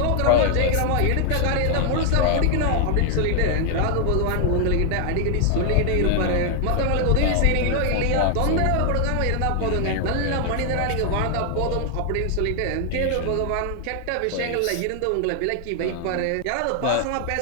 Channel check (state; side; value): different; both; correlation 0.00